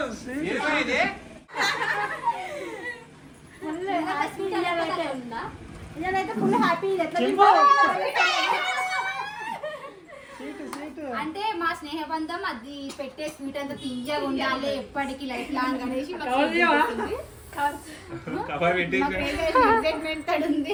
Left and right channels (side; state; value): both; identical; correlation 1.00